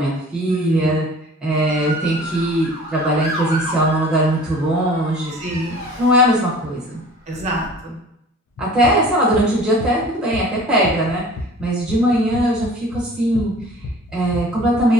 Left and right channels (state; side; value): normal; both; correlation 0.45